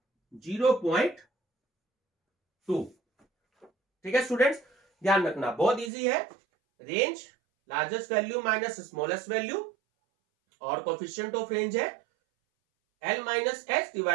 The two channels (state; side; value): drops out; left; at 5.9 s